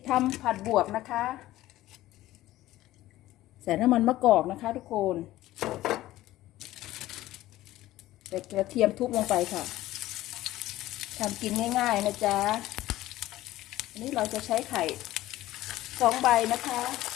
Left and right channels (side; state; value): right; quieter; 15.7 dB